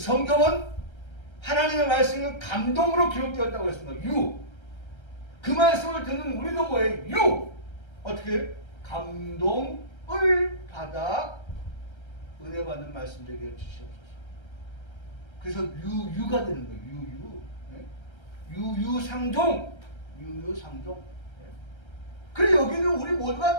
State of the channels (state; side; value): late; right; 1.3 ms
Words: 하나님의 말씀은 감동으로 기록되었다고 했습니다. 유. 그 말씀을 듣는 우리도 뭐예요? 유. 어떻게? 감동을 받아 은혜 받는 말씀 되게 해주시옵소서. 그래서 유유가 되는 거예요. 유유. 예? 유유상종. 유유상종. 예? 그래 여기는 우리 모두가